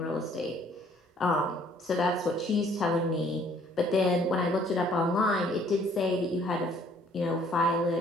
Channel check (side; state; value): both; normal; correlation 0.60